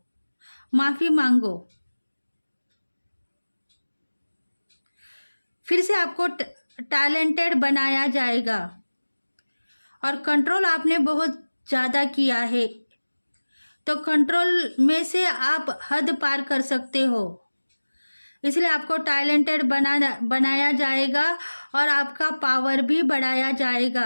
माफ़ी मांगो। फिर से आपको टैलेंटेड बनाया जाएगा। और कंट्रोल आपने बहुत ज़्यादा किया है, तो कंट्रोल में से आप हद पार कर सकते हो। इसलिए आपको टैलेंटेड बनाया जाएगा और आपका पावर भी बढ़ाया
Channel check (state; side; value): inverted; both; correlation -1.00